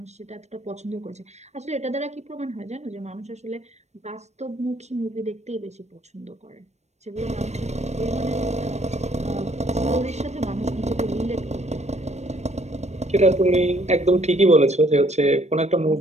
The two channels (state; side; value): late; left; 0.32 ms